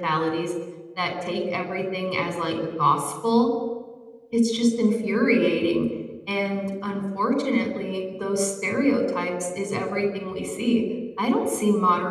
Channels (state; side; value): identical; both; correlation 1.00